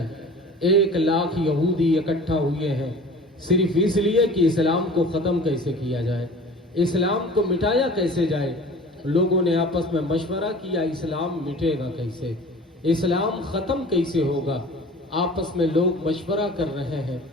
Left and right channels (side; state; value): both; normal; correlation 0.42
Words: 1 لاکھ یہودی اکٹھا ہوئے ہیں صرف اس لیے کہ اسلام کو ختم کیسے کیا جائے، اسلام کو مٹایا کیسے جائے۔ لوگوں نے آپس میں مشورہ کیا اسلام مٹے گا کیسے، اسلام ختم کیسے ہوگا، آپس میں لوگ مشورہ کر رہے ہیں۔